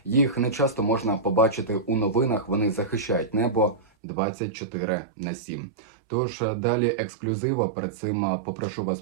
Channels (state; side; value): drops out; left; at 3.9 s